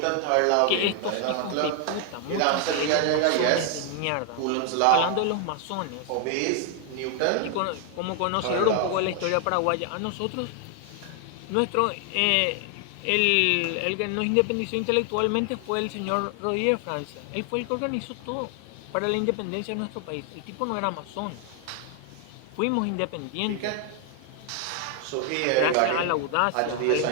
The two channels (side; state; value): both; different; correlation 0.00